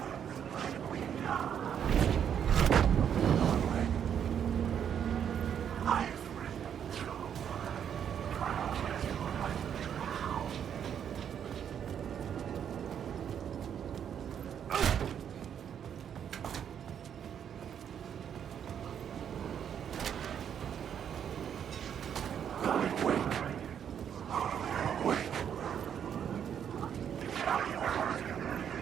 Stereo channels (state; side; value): quieter; left; 8.6 dB